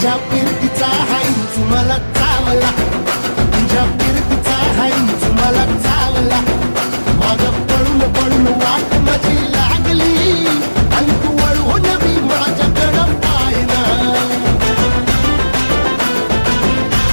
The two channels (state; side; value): inverted; both; correlation -1.00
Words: फिरतीचा हाईच मला चावला तुझ्या फिरतीचा हाईच मला चावला माग पळून पळून वाट माझी लागली आणि तू वळून मी माझ्याकडं पाहिना